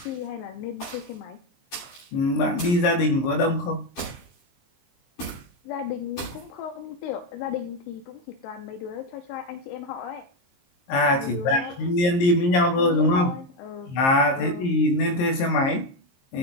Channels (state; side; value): late; right; 23 ms